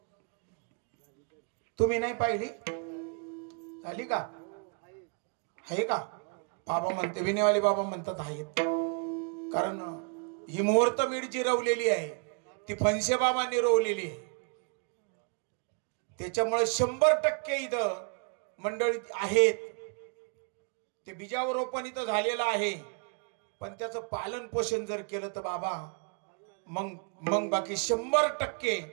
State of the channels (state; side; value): quieter; left; 39.8 dB